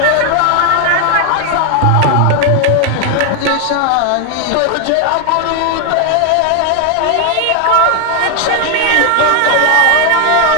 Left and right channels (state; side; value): different; both; correlation 0.01